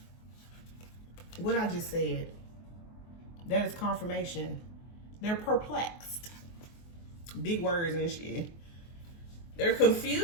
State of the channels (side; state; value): right; late; 24 ms